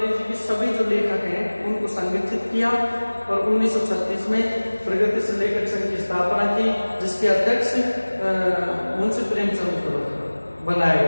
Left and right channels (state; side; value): inverted; both; correlation -1.00